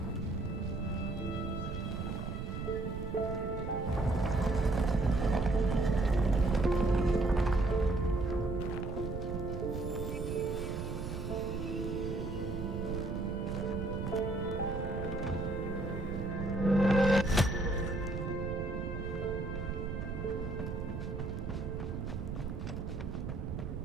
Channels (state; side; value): noise; right; rumble, 5 dB below the sound